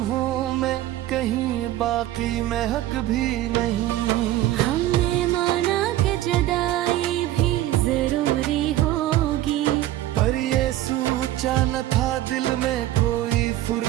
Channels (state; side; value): quieter; left; 14.3 dB